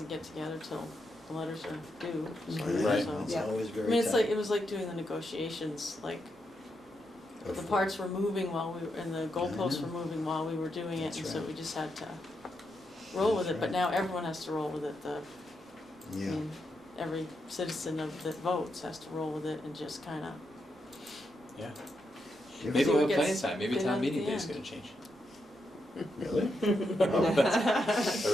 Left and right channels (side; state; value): both; normal; correlation 0.83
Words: get together till the letters are due, sort of, Right. so. it's Yeah. always I very mean, it's tough. like, it was like doing the negotiations, like, the parts were moving while we were, and the goalposts know. were moving while we were doing it, That's and so right. we just had to roll with That's it, but right. now everyone has to roll with it, I Yeah, mean, every citizen that votes has to roll with it and just kinda. Yeah. Give Maybe us- we'll have Gets plenty of time. Maybe thin town at meeting the day is end. gonna change. Really? There